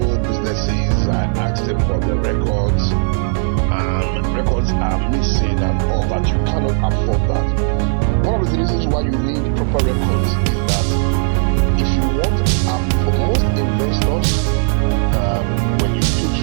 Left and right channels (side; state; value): left; silent; 60 dB below the other